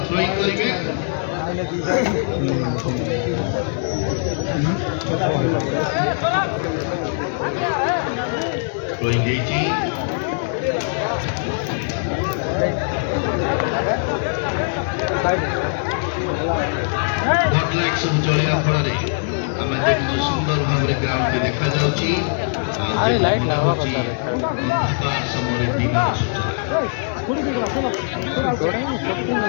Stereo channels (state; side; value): silent; right; 64 dB below the other